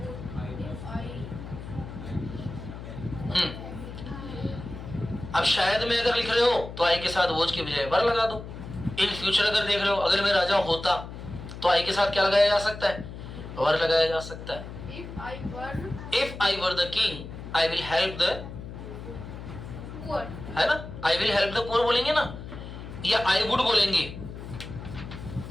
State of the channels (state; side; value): noise; left; hum, 11 dB below the sound